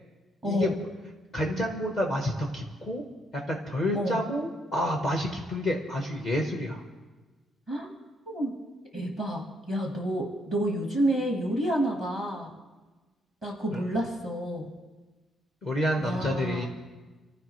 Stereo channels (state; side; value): normal; both; correlation 0.73